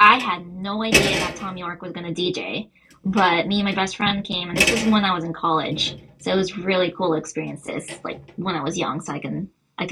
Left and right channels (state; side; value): identical; both; correlation 1.00